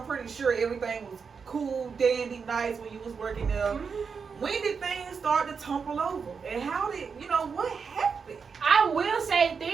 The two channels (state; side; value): quieter; left; 5.7 dB